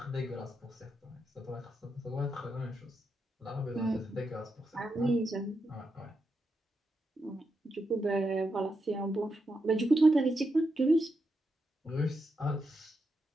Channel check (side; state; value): both; normal; correlation 0.85